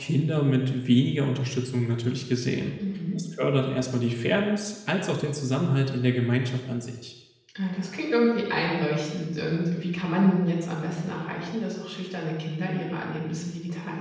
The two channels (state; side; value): identical; both; correlation 1.00